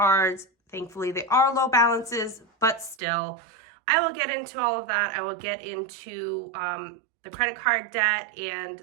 Thankfully, they are low balances, but still, I will get into all of that. I will get into the credit card debt and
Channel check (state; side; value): drops out; left; at 3.0 s